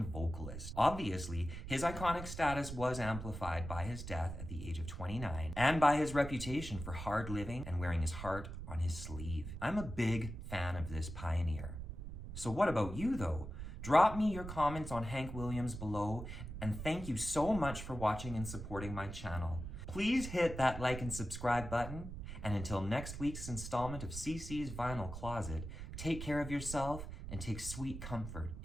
vocalist. Obviously, his iconic status was amplified by his death at the age of 29 and by his reputation for hard living and wearing his heart on his sleeve. I'm a big fan of this pioneer. So what about you though? Drop me your comments on Hank Williams below, and thank you so much for watching and supporting my channel. Please hit that like and subscribe button, and until next week's installment of CC's Vinyl Closet, take care of yourself and take sweet comfort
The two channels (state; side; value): noise; right; rumble, 8 dB below the sound